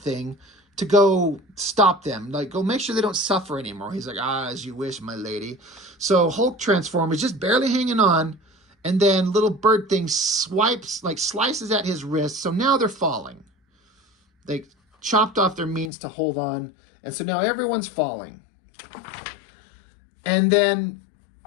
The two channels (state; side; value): drops out; right; at 15.9 s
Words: to go stop them. Like, go make sure they don't suffer anymore. He's like, as you wish, my lady. So Hulk transform is just barely hanging on, and then little bird thing slices at his wrist. So now they're falling. They chopped off their means to hold on, and so now everyone's falling. And then